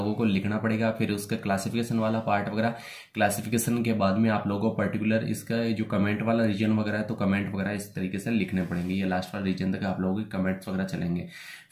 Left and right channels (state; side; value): identical; both; correlation 1.00